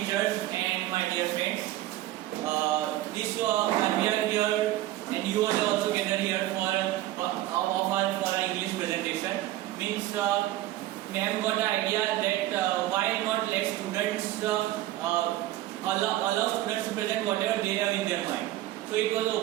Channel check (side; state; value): left; quieter; 15.2 dB